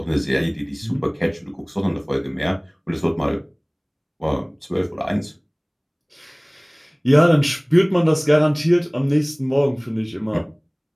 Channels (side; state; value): both; identical; correlation 1.00